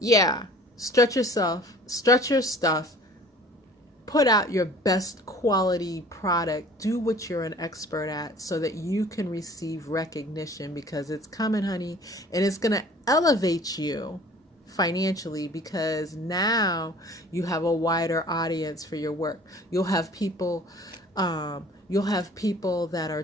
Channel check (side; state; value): both; normal; correlation 0.49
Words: stretch yourself, stretch your stuff, put out your best quality product, do what you're an expert at so that you can receive recognition, because it's coming, honey, and it's going to elevate you financially, because now you have a wider audience for your work. You'll have people that are